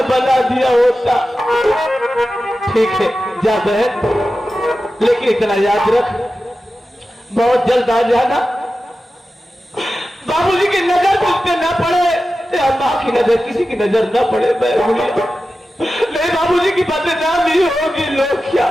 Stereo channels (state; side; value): normal; both; correlation 0.93